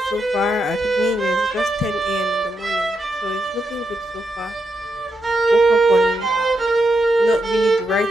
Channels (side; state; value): both; normal; correlation 0.83